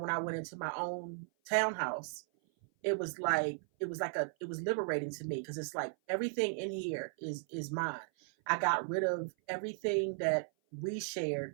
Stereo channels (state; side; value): silent; left; 54 dB below the other